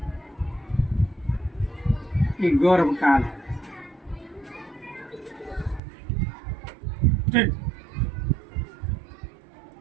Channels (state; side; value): drops out; left; at 5.8 s